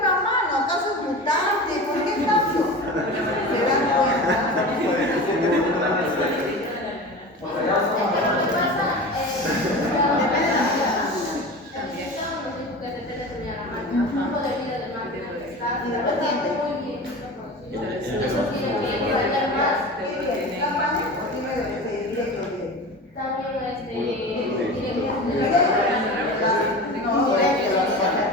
mano, ¿acaso es mutante? ¿Por qué cambio? ¿Se dan cuenta?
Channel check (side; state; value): both; normal; correlation 0.31